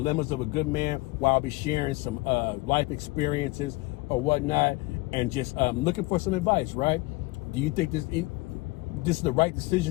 of a good man while I'll be sharing some life experiences or whatnot, and just looking for some advice, right? Do you think this is the right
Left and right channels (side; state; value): right; quieter; 22.4 dB